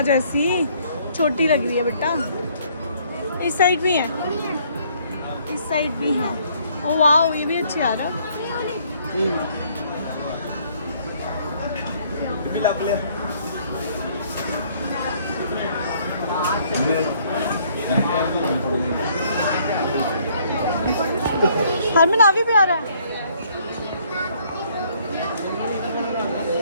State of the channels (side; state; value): both; inverted; correlation -0.64